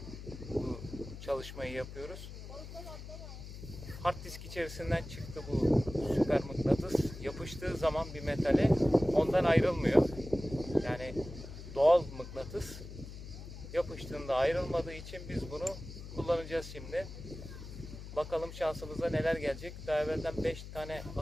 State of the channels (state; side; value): noise; left; hum, 11 dB below the sound